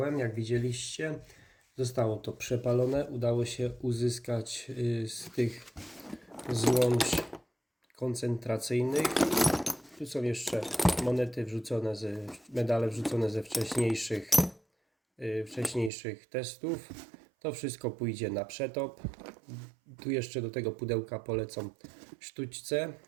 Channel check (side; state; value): left; drops out; at 15.9 s